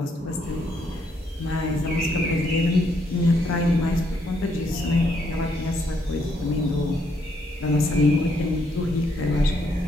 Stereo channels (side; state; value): both; normal; correlation 0.73